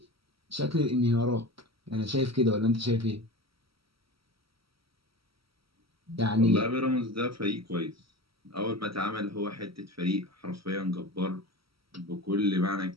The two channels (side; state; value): left; late; 0.75 ms